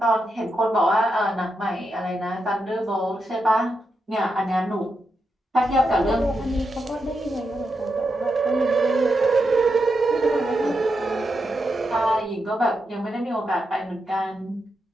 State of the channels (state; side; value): normal; both; correlation 0.86